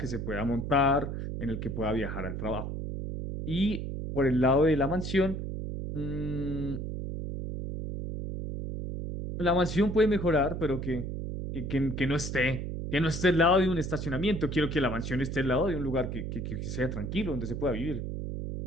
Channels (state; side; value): noise; right; hum, 5 dB below the sound